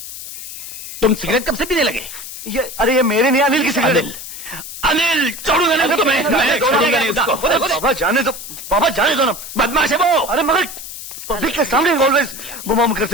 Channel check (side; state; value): left; noise; hiss, 11 dB below the sound